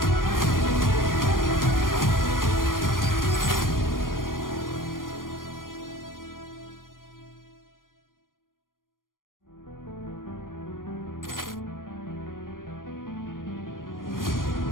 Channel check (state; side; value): late; right; 0.90 ms